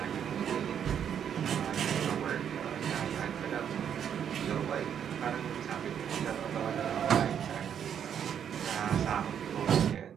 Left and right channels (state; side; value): quieter; left; 8.6 dB